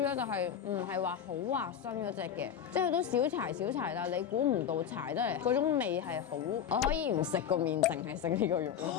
咧，就係唔係話好滑身嗰隻嘅，即係佢都小柴，但係你估唔到柴得嚟嗰種味係好，我可以唔食個麵，淨係食呢個肉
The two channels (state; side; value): quieter; right; 8.7 dB